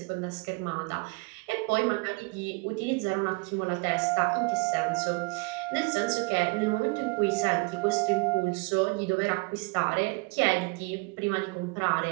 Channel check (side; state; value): left; quieter; 28.1 dB